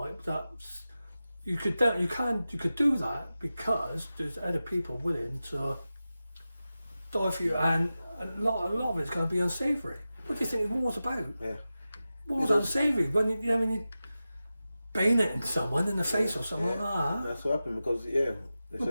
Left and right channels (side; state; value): both; inverted; correlation -0.94